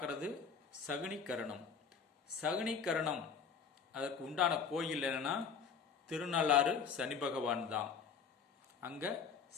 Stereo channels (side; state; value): right; quieter; 6.2 dB